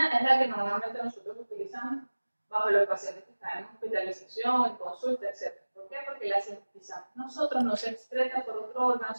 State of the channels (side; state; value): both; inverted; correlation -1.00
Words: es la que normalmente nosotros utilizamos bajo los pacientes que están en hospitalización, en consulta, etc. ¿Por qué? Porque la sintetizamos nosotros, no se excreta por otro órgano,